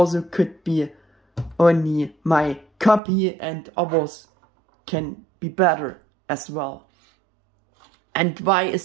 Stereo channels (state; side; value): drops out; left; at 3.0 s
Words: could be only my copy and others can be better as well. And why